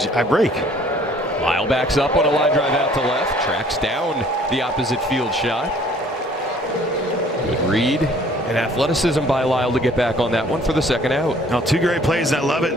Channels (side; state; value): both; normal; correlation 0.56